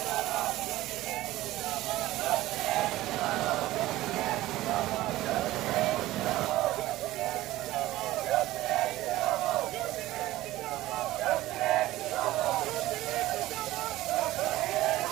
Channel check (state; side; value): quieter; left; 16.6 dB